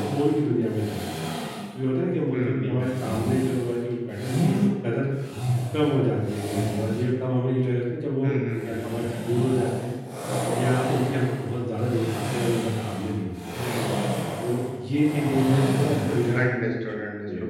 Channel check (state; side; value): identical; both; correlation 1.00